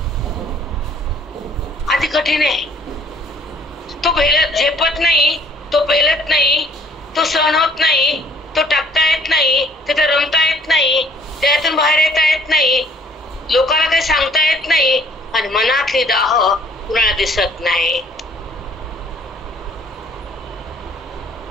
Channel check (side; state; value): both; normal; correlation 0.58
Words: आधी कठीण आहे. तो झेपत नाही, तो पेलत नाही, तो सहन होत नाही, तो टाकता येत नाही, तिथे रमता येत नाही, त्यातून बाहेर येता येत नाही, लोकांना काही सांगता येत नाही, आणि मनातली दाह कुणाला दिसत नाही.